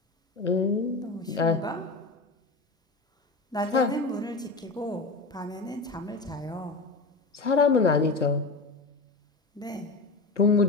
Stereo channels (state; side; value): quieter; right; 3.6 dB